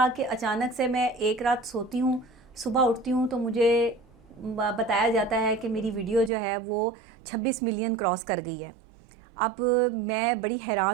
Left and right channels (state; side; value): drops out; left; at 6.3 s